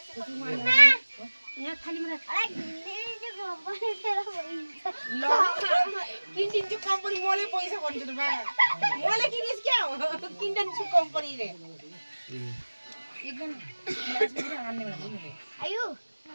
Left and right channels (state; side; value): inverted; both; correlation -1.00